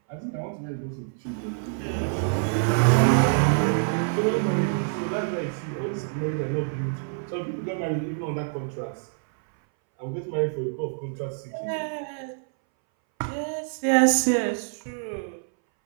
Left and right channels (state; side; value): silent; left; 61 dB below the other